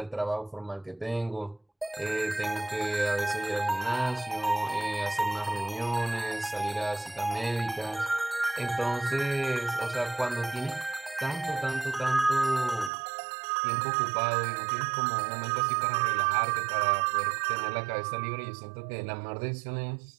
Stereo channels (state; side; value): drops out; left; at 12.9 s